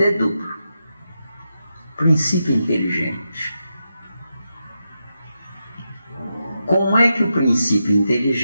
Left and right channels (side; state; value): both; inverted; correlation -0.87